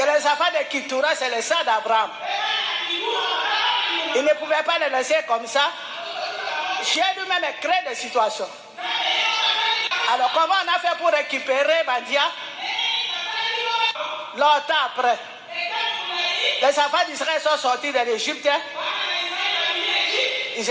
les enfants de Ketura c'est le sang d'Abraham. Il ne pouvait pas le laisser comme ça. Dieu lui-même crée des situations. Alors comment on a fait pour récupérer Mandia? Longtemps après, les enfants d'Israël sont sortis de l'Égypte. Ils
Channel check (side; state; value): both; identical; correlation 1.00